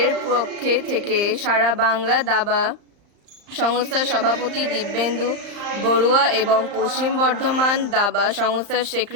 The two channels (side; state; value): left; late; 35 ms